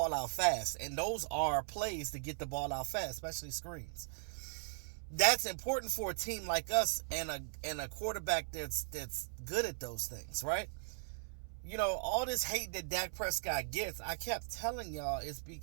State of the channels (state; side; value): silent; left; 52 dB below the other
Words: out fast. And those are plays to get the ball out fast, especially screens. That's important for a team like us and a quarterback that's good at those things, right? All this hate that Dak Prescott gets, I kept telling y'all